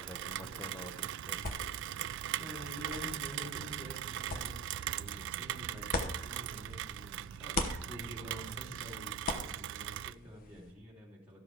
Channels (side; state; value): left; quieter; 4.2 dB